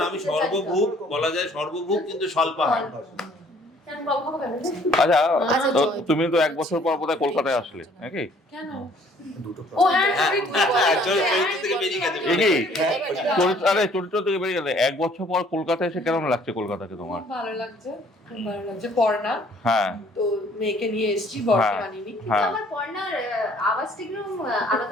আমি সর্বভূক বলা যায়, সর্বভূক কিন্তু স্বল্পাহার। আচ্ছা, তো তুমি তো 1 বছর পর বোধহয় কলকাতায় আসলে নাকি? কেন? ও হ্যাঁ, চরিত্র থেকে বেরিয়ে গেছে। আরে চরিত্র থেকে বেরিয়ে গেলে 1 বছর পর কলকাতায় এসে কেমন লাগছে কলকাতাকে তোমার? খুব ভালো লাগছে, খুব ভালো লাগছে। পড়না, হ্যাঁ, তো মেয়েকে নিয়ে এসেছি, বরকে আনিনি। কিন্তু আমার পর্ণার আওয়াজটা একদম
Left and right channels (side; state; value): both; normal; correlation 0.59